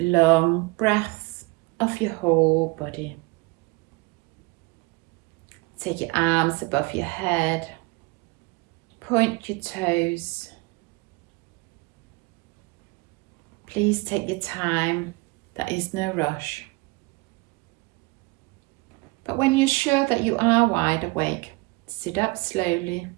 breaths of your whole body. Take your arms above your head. Point your toes. Please take your time. There is no rush. But when you're sure that you are wide awake, sit up slowly.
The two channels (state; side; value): quieter; left; 25.9 dB